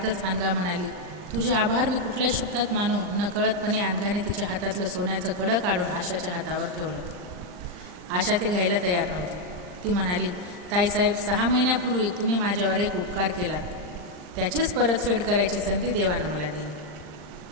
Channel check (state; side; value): late; left; 39 ms